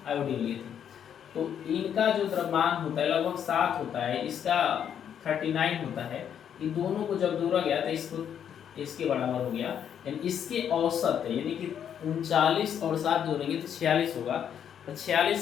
आयोडीन लिए थे। तो इनका जो द्रव्यमान होता है लगभग 7 होता है, इसका 39 होता है। इन दोनों को जब जोड़ा गया तो इसको इसके बराबर हो गया, यानी इसके औसत है, यानी कि 39 और 7 जोड़ेंगे तो 46 होगा। तो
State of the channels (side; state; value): right; quieter; 8.8 dB